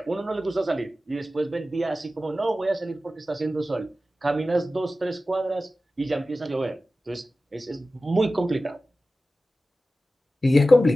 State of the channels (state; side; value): normal; both; correlation 0.95